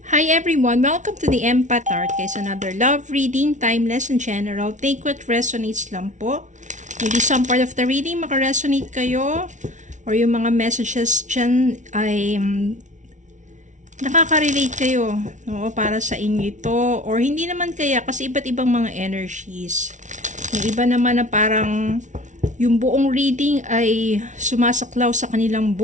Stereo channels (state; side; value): late; left; 0.36 ms